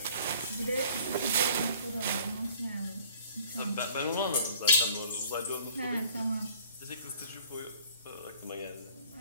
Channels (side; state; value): both; inverted; correlation -0.52